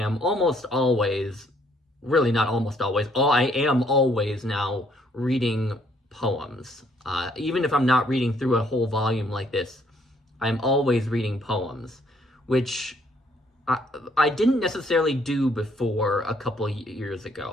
almost always, really not almost always, I am always now reading poems. Even if I'm not reading through a whole volume like this, I'm always reading poems, which I didn't necessarily do before a couple years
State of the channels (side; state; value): both; normal; correlation 0.66